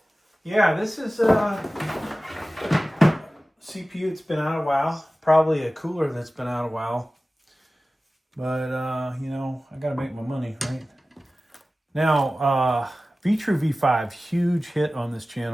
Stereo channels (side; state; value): both; normal; correlation 0.96